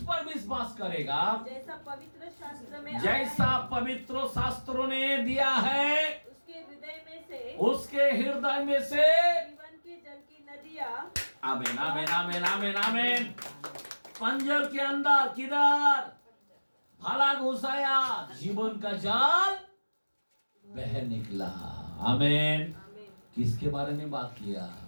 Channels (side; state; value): both; inverted; correlation -1.00